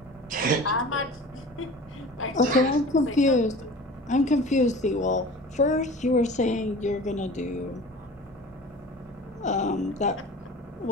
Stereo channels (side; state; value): both; normal; correlation 0.39